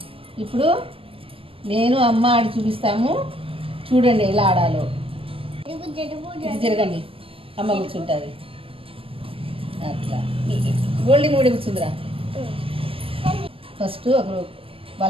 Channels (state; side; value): late; left; 0.26 ms